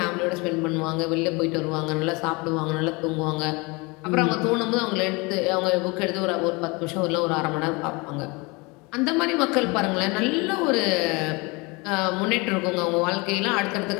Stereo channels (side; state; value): right; quieter; 26.7 dB